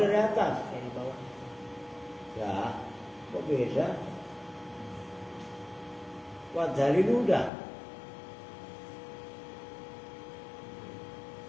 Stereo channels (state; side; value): drops out; right; at 7.5 s